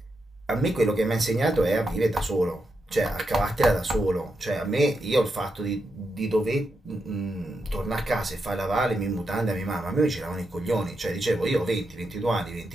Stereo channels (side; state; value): both; normal; correlation 0.85